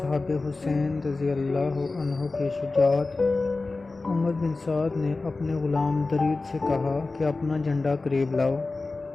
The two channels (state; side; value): quieter; right; 3.5 dB